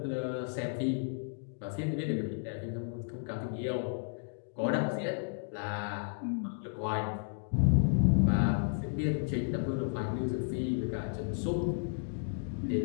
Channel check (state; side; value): silent; right; digital silence